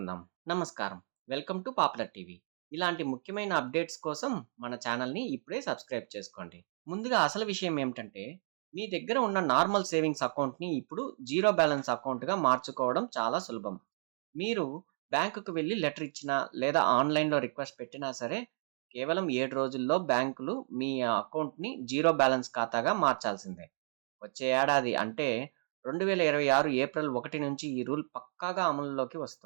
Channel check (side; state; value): left; silent; digital silence